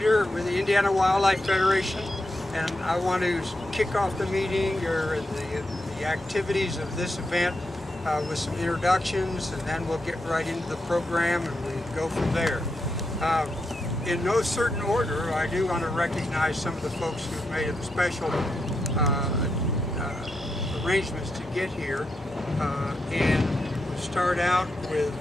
with the Indiana Wildlife Federation, and I want to kick off the meeting or the activities of this event with some introductions, and then we'll get right into the program and we go from there. In no certain order, I do want to recognize some of the folks who've made special arrangements to get here, and we'll start out with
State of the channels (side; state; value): both; normal; correlation 0.84